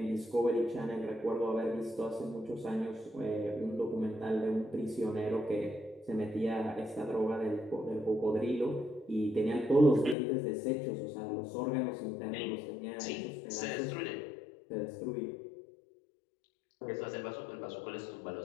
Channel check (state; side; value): drops out; right; at 10.2 s